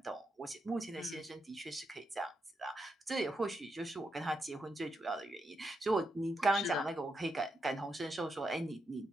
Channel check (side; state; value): both; normal; correlation 0.83